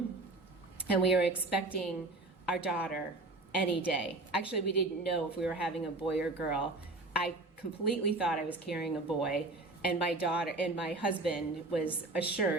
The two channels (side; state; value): left; quieter; 3.0 dB